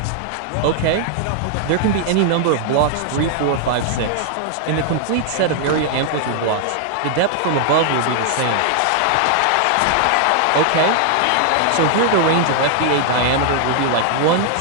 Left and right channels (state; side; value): different; both; correlation 0.00